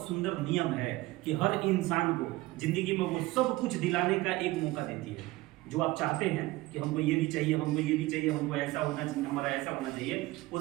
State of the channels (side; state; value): left; quieter; 19.5 dB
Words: सुंदर नियम है कि हर इंसान को जिंदगी में वो सब कुछ दिलाने का एक मौका देती है। जो आप चाहते हैं कि हमको ये भी चाहिए, हमको ये भी चाहिए, हमको ऐसा होना चाहिए, हमारा ऐसा होना चाहिए, वो